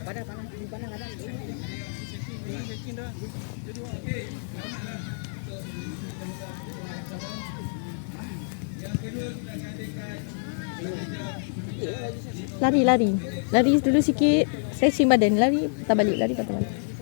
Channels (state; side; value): silent; right; digital silence